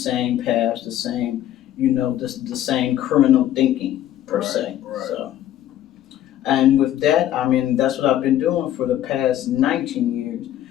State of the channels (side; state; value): right; quieter; 12.1 dB